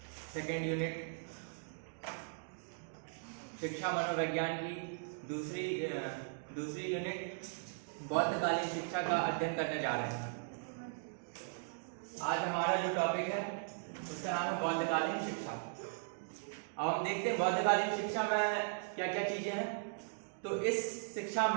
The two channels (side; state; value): left; silent; digital silence